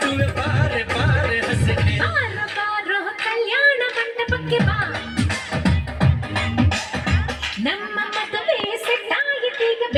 ಬಾರೆ ಬಾರೆ ಹಸನೆ ಬಾರೋ ಬಾರೋ ಕಲ್ಯಾಣ ಮಂಟಪಕ್ಕೆ ಬಾ ನಮ್ಮ ಮದುವೆ ಸೆಟ್ಟಾಯಿತೀಗ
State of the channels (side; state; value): both; identical; correlation 1.00